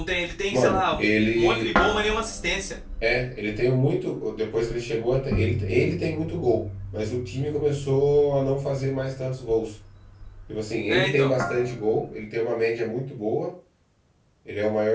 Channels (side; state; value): both; identical; correlation 1.00